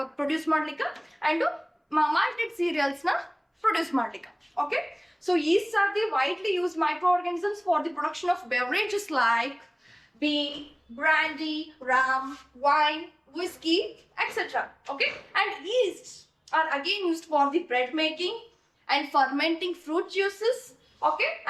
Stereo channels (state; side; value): identical; both; correlation 1.00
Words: produce ಮಾಡ್ಲಿಕ್ಕ, and malted cereals na produce ಮಾಡ್ಲಿಕ್ಕ. okay, so yeasts are the widely used microorganisms for the production of beverages like beer, brandy, rum, wine, whiskey, etc. okay, and yeasts are again used for the bread making and fermenting fruit juices, okay,